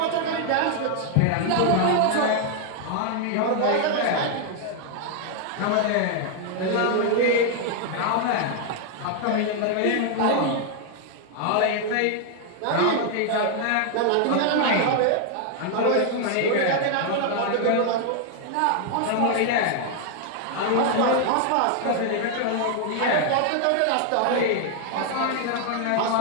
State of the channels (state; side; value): different; both; correlation 0.00